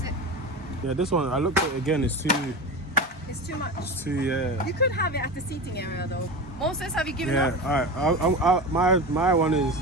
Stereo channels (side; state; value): both; normal; correlation 0.25